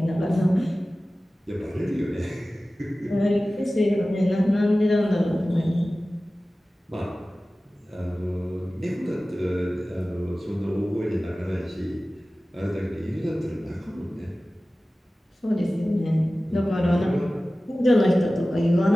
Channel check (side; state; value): both; normal; correlation 0.96